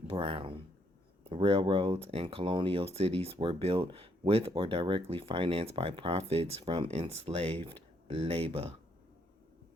Railroads and colonial cities were built with or directly financed by profits from enslaved labor.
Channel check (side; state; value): both; normal; correlation 0.72